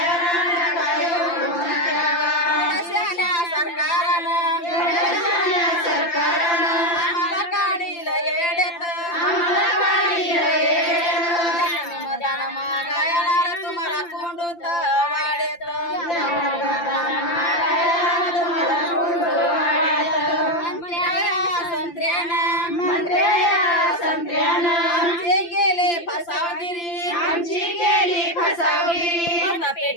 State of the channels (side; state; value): right; late; 5.8 ms